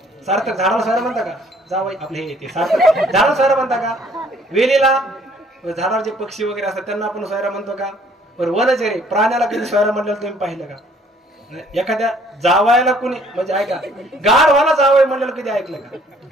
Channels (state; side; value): normal; both; correlation 0.60